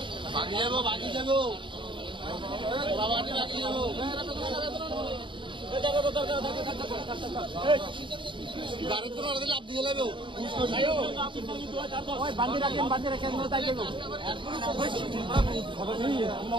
বাকি যাবো বাকি যাবো বাবাটি বাকি যাবো গাড়ি তো না লাভ দিয়ে যাবে ওই বাঁধি রাখেন তাই যাবো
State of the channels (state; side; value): late; left; 0.24 ms